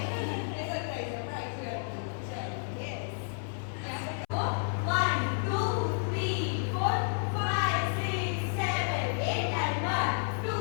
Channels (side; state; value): right; silent; 57 dB below the other